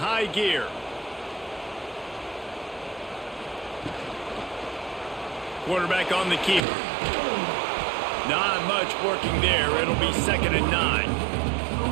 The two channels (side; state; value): left; drops out; at 6.6 s